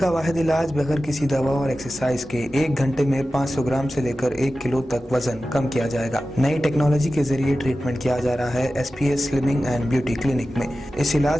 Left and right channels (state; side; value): normal; both; correlation 0.94